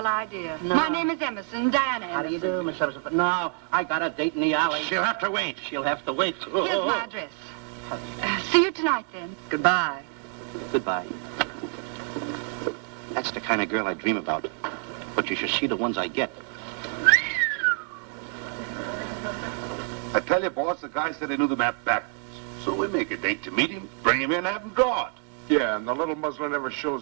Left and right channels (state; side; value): quieter; left; 38.4 dB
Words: idea. No. My name is Emerson, Diana Emerson. How do you do, Miss Emerson? But no, I got a date in the alley. She'll have to wait. She'll have to wait. Here's my address. See you tonight, then. Goodbye. Goodbye. That's the kind of girl I dream about. But you should see the ones I get. I tell you, boss, the guy said he knew the map backwards. So we make a date to meet him, bring him in, have him draw it. Yeah, and the little muzzler never